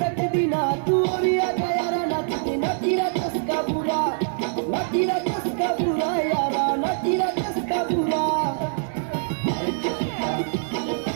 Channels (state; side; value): silent; left; digital silence